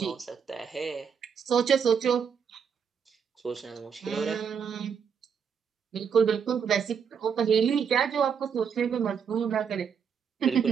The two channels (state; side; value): quieter; left; 7.0 dB